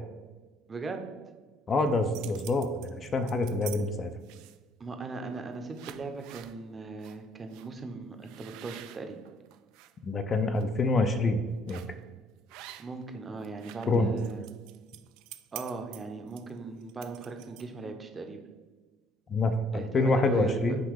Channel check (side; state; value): both; normal; correlation 0.65